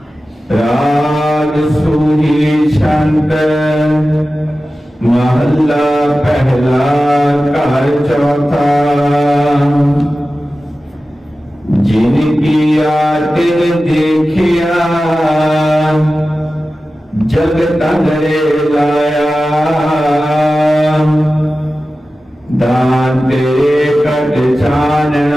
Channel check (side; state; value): both; normal; correlation 0.95